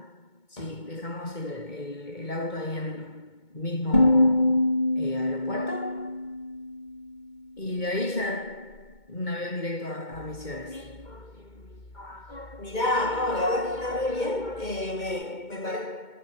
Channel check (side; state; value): right; late; 2.2 ms